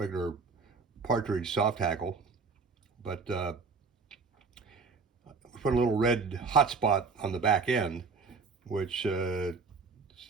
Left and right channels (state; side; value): quieter; left; 4.7 dB